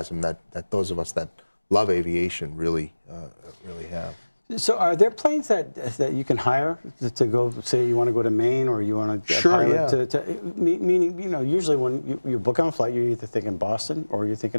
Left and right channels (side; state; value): both; inverted; correlation -1.00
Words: that those of us that love aviation really have. So are there planes that you can hire to go, say you want to go to Maine or you want to pilot meaning, you know, usually when you book on a flight, you're either thinking Boston or you're